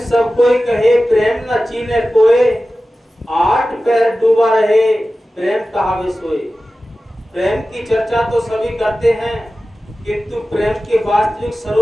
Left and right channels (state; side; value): normal; both; correlation 0.95